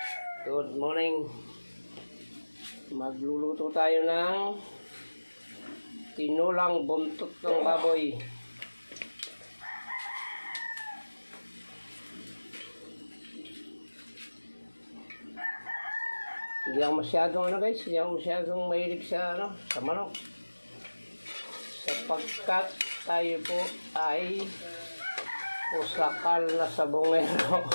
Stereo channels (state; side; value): inverted; both; correlation -1.00